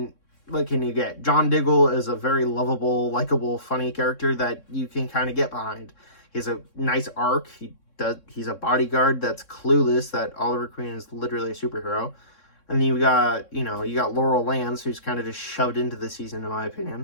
what can you get? John Diggle is a very lovable, likable, funny character that you can kind of get behind. He has a nice arc. He's a bodyguard that's clueless that Oliver Queen is literally a superhero. And then you got Laurel Lance, who's kind of just shoved into the season, in my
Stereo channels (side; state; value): right; late; 3.6 ms